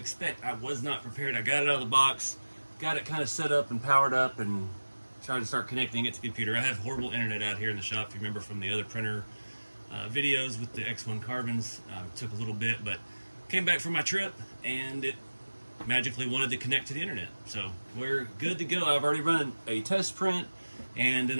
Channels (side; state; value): both; inverted; correlation -1.00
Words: I was not prepared. I got it out of the box, got it kind of set up and powered up, and tried to start connecting it to the computer. I have horrible internet out here in the shop, if you remember from the other printer videos with the X1 carbons. It took a little bit, but came back from my trip and it magically wanted to connect to the internet. So we're good to go. I've already run a test print, and